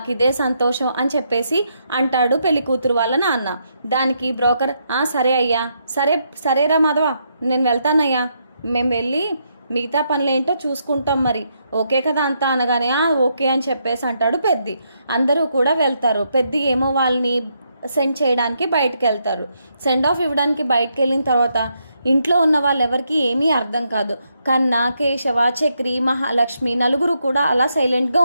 ఇదే సంతోషం అని చెప్పేసి అంటాడు పెళ్లి కూతురు వాళ్ళ నాన్న. దానికి బ్రోకర్, సరే అయ్యా, సరేరా మాధవ నేను వెళ్తానయ్యా, మేము వెళ్ళి మిగతా పనులేంటో చూసుకుంటాం, మరి ఓకే కదా అంతా అనగానే ఓకే అని చెప్పేసి అంటాడు పెద్ది. అందరూ కూడా వెళ్తారు. పెద్ది ఏమో వాళ్ళని సెండ్ చేయడానికి బయటకు వెళ్తారు. సెండ్ ఆఫ్ ఇవ్వడానికి బయటకు వెళ్ళిన తర్వాత ఇంట్లో ఉన్న వాళ్ళెవరికి ఏమీ అర్థం కాదు. కన్నా, కేశవ, చక్రి, మహాలక్ష్మి నలుగురు కూడా అలా సైలెంట్గా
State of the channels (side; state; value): both; inverted; correlation -0.78